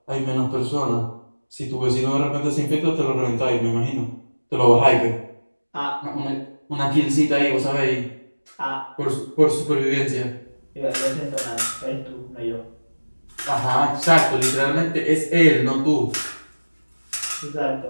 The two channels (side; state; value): both; inverted; correlation -1.00